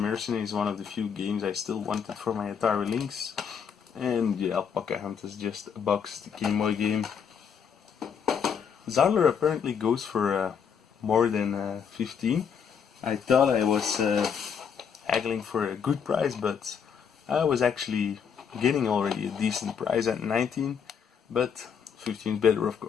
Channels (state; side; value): quieter; right; 7.2 dB